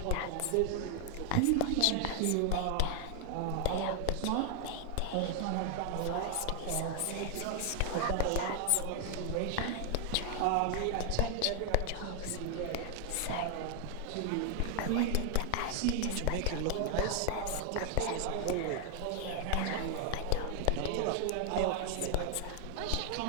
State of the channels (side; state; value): both; different; correlation 0.00